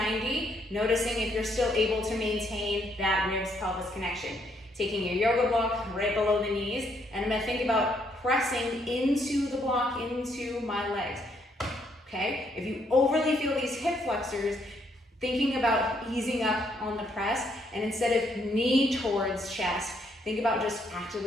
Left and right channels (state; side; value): normal; both; correlation 0.72